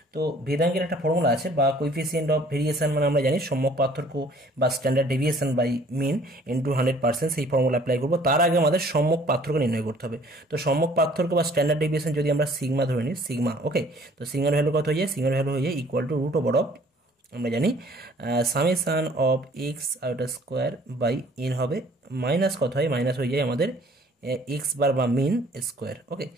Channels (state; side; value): normal; both; correlation 0.55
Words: তো ভেদাঙ্কের একটা ফর্মুলা আছে বা কোইফিসিয়েন্ট অফ ভেরিয়েশন, মানে আমরা জানি সম্যক পার্থক্য বা standard deviation by mean into 100%, সেই ফর্মুলা অ্যাপ্লাই করবো। তার আগে আমাদের সম্যক পার্থক্য নির্ণয় করতে হবে। তো সম্যক পার্থক্য বা স্ট্যান্ডার্ড ডেভিয়েশন যদি আমরা সিগমা ধরে নিই, সিগমা, ওকে, তো সিগমার ভ্যালু কত হয়ে যায়, সিগমার ভ্যালু হয়ে যায় equal to root over of, আমরা জানি সামেশন অফ এক্স আইটা স্কোয়ার বাই এন হবে, মাইনাস কত হয়, মাইনাস হয়ে যায় আমাদের এক্স বার বা মিন স্কোয়ার। ওকে,